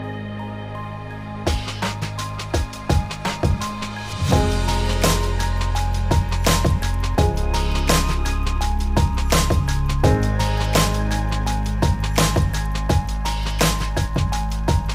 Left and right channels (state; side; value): identical; both; correlation 1.00